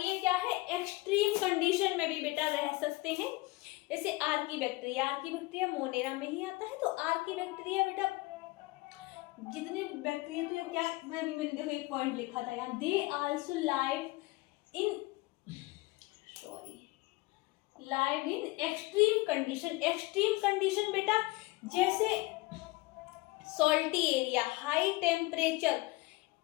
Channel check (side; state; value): right; quieter; 22.3 dB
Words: क्या है, एक्सट्रीम कंडीशन में भी बेटा रह सकते हैं, जैसे आर्कीबैक्टीरिया मोनेरा में ही आता है। तो आर्कीबैक्टीरिया बेटा जितने बैक्टीरिया, तो क्या मैंने देखो एक पॉइंट लिखा था यार, they also live in extreme condition. Extreme condition बेटा जैसे salty area, high temperature,